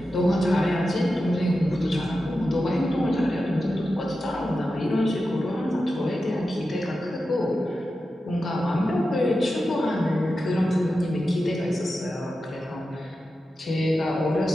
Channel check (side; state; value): both; normal; correlation 0.91